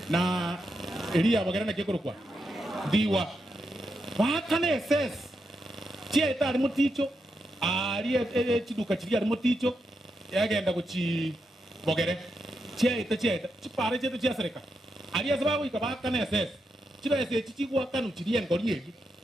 na elia bagera na kekorokwa diwa bakane ss chia etari muticho ali chiduka chiri ari muticho yagenda kuchi bogere chia chipare chetu chia sereka ali asababu ikabakane ss chibese chichigwa kanu chiri engori egi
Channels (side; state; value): both; normal; correlation 0.84